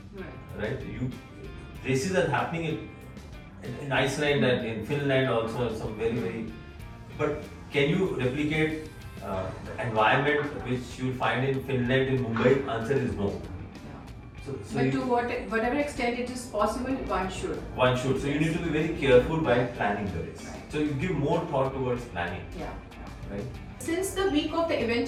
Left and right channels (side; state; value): both; identical; correlation 1.00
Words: Right? Races are happening in Iceland and in Finland also, some very. But can you replicate the environment which you find in Finland, in Mumbai? Answer is no. So But to whatever extent it is possible, one should. One should. So you need to be very careful while planning the race. Right. So you give more thought towards planning. Yeah. Right? Since the week of the